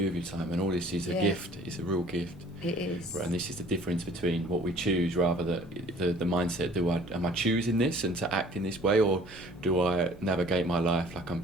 with your time? And all this is a gift. It's a real gift. It is. And this is the difference between what we choose, rather the mindset. Am I choosing this and to act in this way, or do I navigate my life like I'm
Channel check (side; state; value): both; normal; correlation 0.52